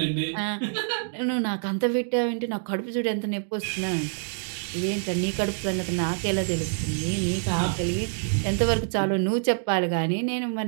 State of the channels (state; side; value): silent; left; digital silence